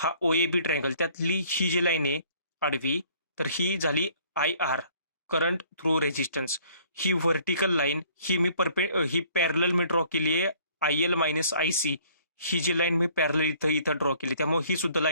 OAB ट्रायंगल, त्यातली ही जी लाईन आहे आडवी, तर ही झाली IR करंट थ्रू रेजिस्टन्स. ही व्हर्टिकल लाईन ही पॅरलल मी ड्रॉ केली आहे IL मायनस IC. ही जी लाईन मी पॅरलल इथं ड्रॉ केली, त्यामुळे ही सुद्धा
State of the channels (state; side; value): inverted; both; correlation -0.57